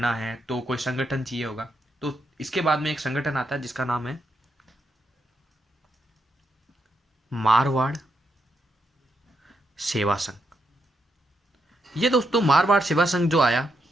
है तो कोई संगठन चाहिए होगा, तो इसके बाद में एक संगठन आता है जिसका नाम है मारवाड़ सेवा संघ। ये दोस्तों मारवाड़ सेवा संघ जो आया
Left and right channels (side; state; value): both; normal; correlation 0.81